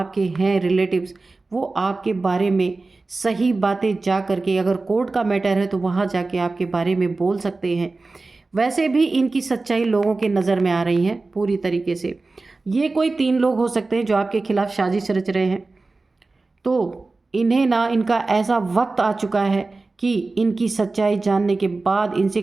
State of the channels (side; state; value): left; quieter; 3.5 dB